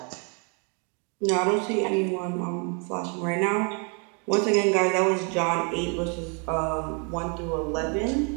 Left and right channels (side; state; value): left; quieter; 36.5 dB